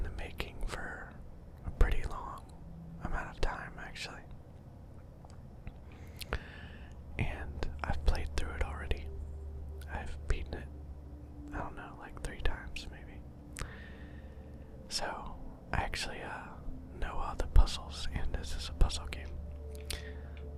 the making for a pretty long amount of time, actually. And I've played through it already. I've beaten it, I don't know, like 3 times maybe. So, I actually know all the puzzles, and this is a puzzle game.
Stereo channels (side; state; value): both; identical; correlation 1.00